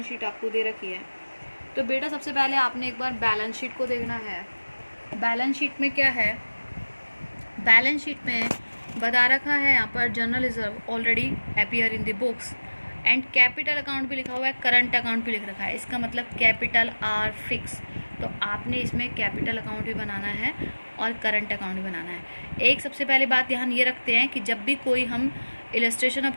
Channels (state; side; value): inverted; both; correlation -1.00